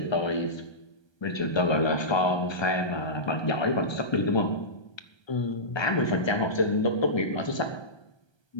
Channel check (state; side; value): late; right; 1.3 ms